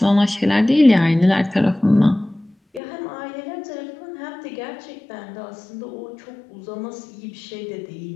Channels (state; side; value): drops out; right; at 2.8 s